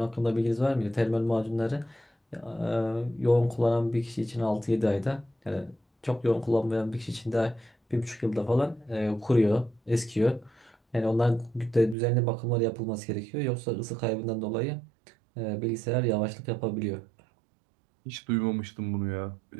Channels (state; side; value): drops out; left; at 12.0 s